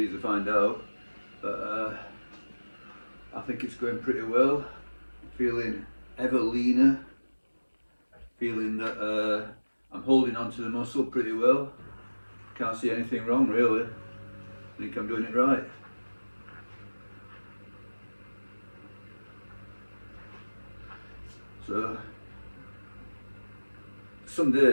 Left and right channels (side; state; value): both; inverted; correlation -1.00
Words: to find out. But I think it's going pretty well. Feeling ever leaner. Feeling that I'm holding onto the muscle pretty well. Can't see anything wrong really. I think I'm doing it right. So some